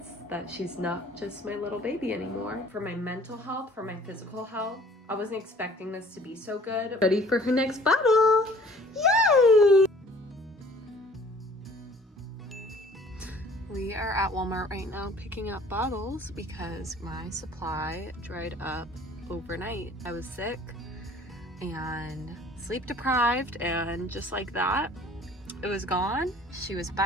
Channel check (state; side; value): normal; both; correlation 0.52